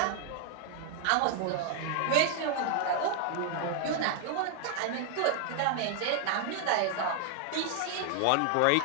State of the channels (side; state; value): both; different; correlation 0.00